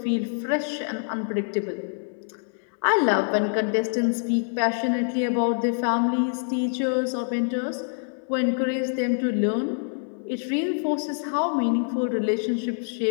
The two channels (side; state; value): right; silent; digital silence